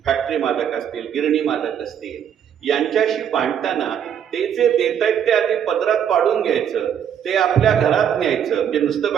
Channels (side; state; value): left; quieter; 8.9 dB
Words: फॅक्टरी मालक असतील, गिरणी मालक असतील, यांच्याशी भांडताना ते जे देत आहेत ते आधी पदरात पाडून घ्यायचं, ते आपल्या घरात न्यायचं. म्हणजे नुसतं